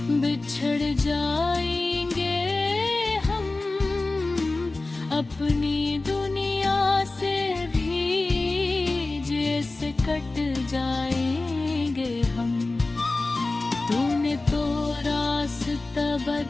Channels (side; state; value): right; quieter; 3.2 dB